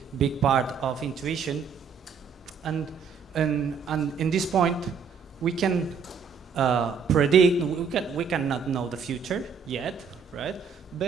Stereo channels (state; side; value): quieter; left; 6.1 dB